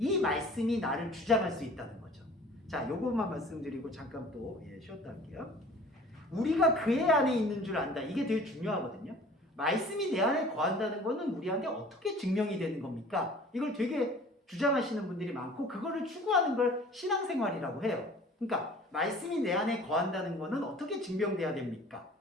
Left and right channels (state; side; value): normal; both; correlation 0.47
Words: 말씀이 나를 주장할 수 있다는 거죠. 자, 요것만 말씀드리고 잠깐 또 쉬었다 할게요. 우리가 그의 안에 있는 줄 안다. 이게 되게 중요하거든요. 말씀이 내 안에 거한다는 거는 우리한테 어떻게 증명이 되는 겁니까? 이걸 되게 주장하시는 분들이 많고 그거를 추구하는 걸 신앙생활이라고 해요. 그러니까 말씀이 내 안에 거한다는 거는 어떻게 증명돼야 됩니까?